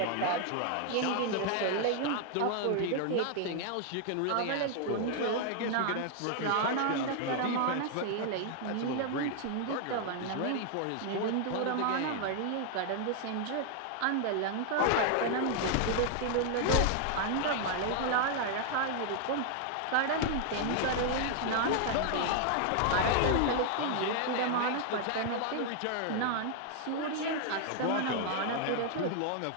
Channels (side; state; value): both; different; correlation 0.00